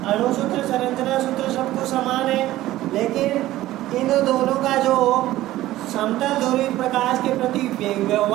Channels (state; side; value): quieter; left; 15.5 dB